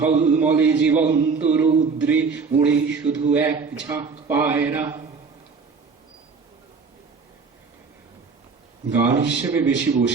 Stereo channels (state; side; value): quieter; left; 5.0 dB